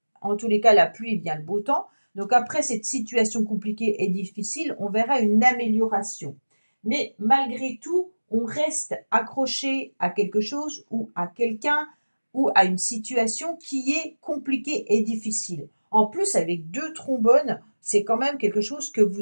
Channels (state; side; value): inverted; both; correlation -1.00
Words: en tous les cas, la pluie vient le beau temps. Donc après cette situation compliquée et difficile, on verra une amélioration. Mais malgré tout, on reste accroché à quelque chose ou à quelqu'un ou à une situation qui est compliquée et difficile. En plus, avec 2 trombones, c'est quand même quelque chose que vous